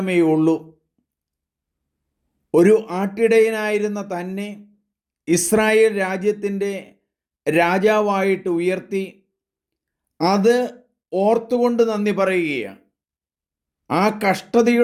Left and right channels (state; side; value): identical; both; correlation 1.00